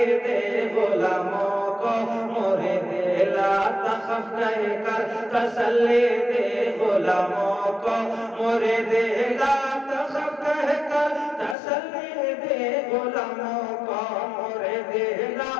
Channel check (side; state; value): right; drops out; at 11.6 s